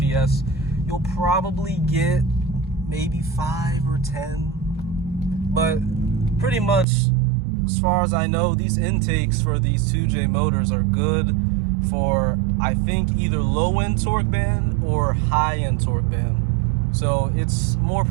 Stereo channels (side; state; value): left; drops out; at 6.9 s